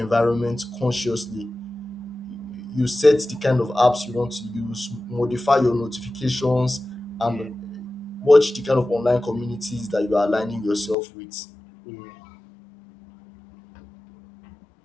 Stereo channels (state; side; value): drops out; right; at 11.0 s